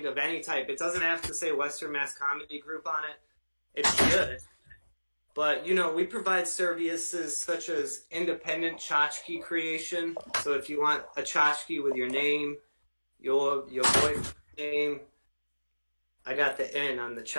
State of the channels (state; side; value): inverted; both; correlation -1.00